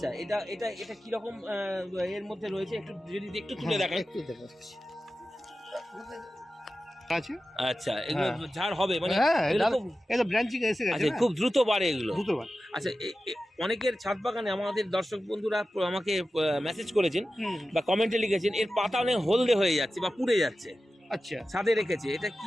এটা কি রকম এর মধ্যে রয়েছে একটু যদি একটু তুলে দেখান। আছে। আচ্ছা, এগুলো ঝাড় হবে মানে? এটা ব্রাঞ্চিং এসে গেছে। আচ্ছা, খুব দ্রুত বাড়ে এগুলো। আচ্ছা, অনেকের ছাদ বাগানে আমাদের দর্শক বন্ধুরা আমাকে মেসেজ করেছেন বা কমেন্টে লিখেছেন, এর পাতা অনেক হলদে হয়ে যাচ্ছে বা পুড়ে যাচ্ছে। আচ্ছা, ছাদে রেখেছে, এটা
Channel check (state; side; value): normal; both; correlation 0.93